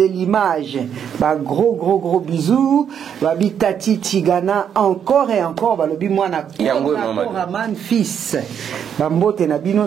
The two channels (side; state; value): left; quieter; 8.3 dB